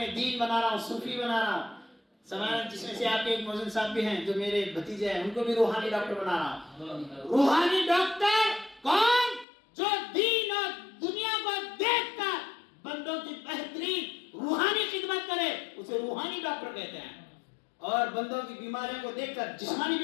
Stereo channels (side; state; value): right; drops out; at 9.5 s